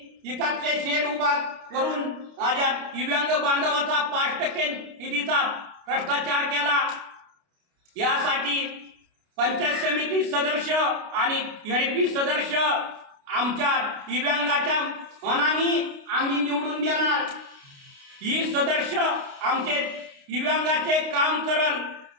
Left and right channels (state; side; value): late; left; 29 ms